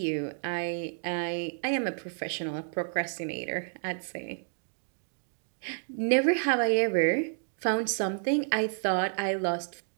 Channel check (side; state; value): left; silent; digital silence